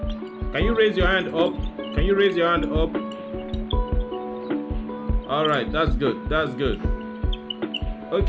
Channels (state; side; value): identical; both; correlation 1.00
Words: Can you raise your hand up? Can you raise your hand up? All right, that's good. That's good.